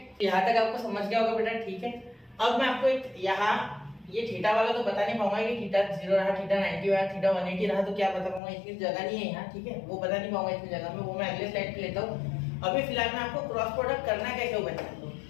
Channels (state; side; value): drops out; right; at 8.4 s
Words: यहाँ तक आपको समझ गया होगा बेटा? ठीक है, अब मैं आपको एक यहाँ ये थीटा वाला तो बता नहीं पाऊंगा कि थीटा 0 रहा, थीटा 90 रहा, थीटा 180 रहा, तो क्या बता पाऊंगा, इतनी जगह नहीं है यहाँ। ठीक है, वो बता नहीं पाऊंगा इतनी जगह में, वो मैं अगले स्लाइड पे लेता हूँ। अभी फिलहाल मैं आपको क्रॉस प्रोडक्ट करना कैसे हो बताता हूँ।